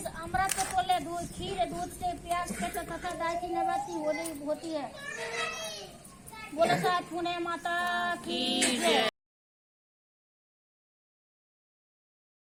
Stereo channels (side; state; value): both; identical; correlation 1.00